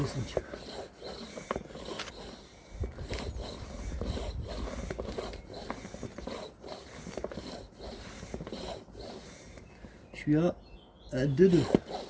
Je suis à 2,2.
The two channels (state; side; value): identical; both; correlation 1.00